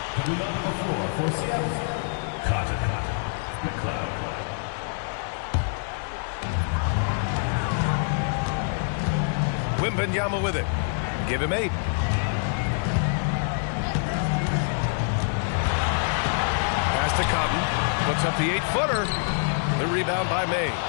Coming onto the floor for Seattle, Cotton McLeod. Wembanyama with it. Give him 8. Pass to Cotton. Puts up the 8-footer. The rebound by May.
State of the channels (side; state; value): right; silent; digital silence